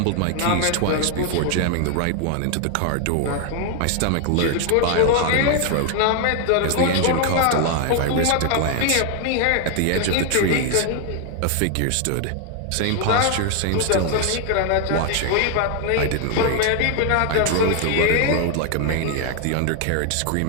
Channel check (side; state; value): both; different; correlation 0.00